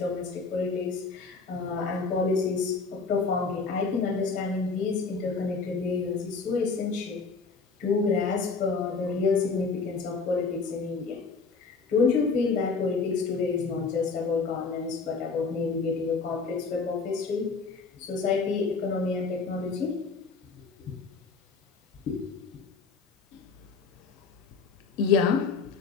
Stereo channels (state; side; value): quieter; right; 4.6 dB